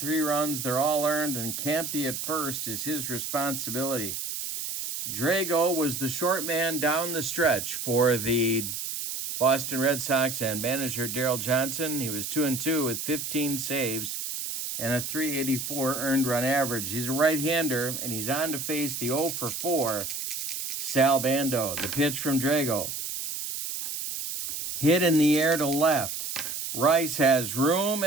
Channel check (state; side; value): noise; right; hiss, 5 dB below the sound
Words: runs. They're all earned, and Campy at first is his responsibility. Drago was the short man down the stretch for the Boston Red Sox and manager Daryl Johnson. He was 2-2 with 15 saves and a .384 earned run average. He's a right-hander, and he's on to face the 0 for 4 Sal Bando. The pitch from Drago. Hit in the air to left. Rice has room